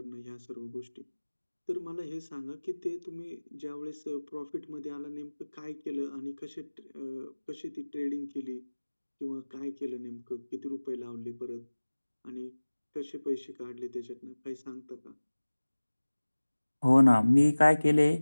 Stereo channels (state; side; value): inverted; both; correlation -1.00